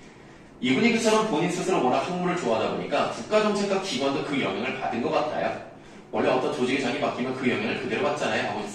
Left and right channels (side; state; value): both; identical; correlation 1.00